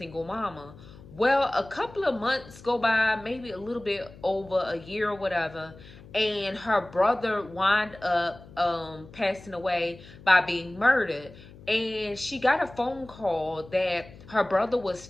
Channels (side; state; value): left; noise; hum, 20 dB below the sound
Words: mama. Well, a couple of months go by, maybe a little bit over a year or whatever, and her brother wound up passing away by being murdered. And she got a phone call that her brother was